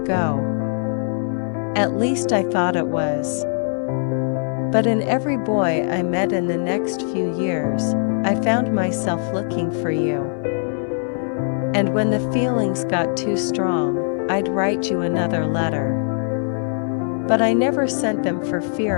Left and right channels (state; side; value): silent; right; digital silence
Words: go. At least I thought it was. But in every boy I met in the next few years, I found myself looking for you. And when the feelings got too strong, I'd write you another letter. But I never sent them for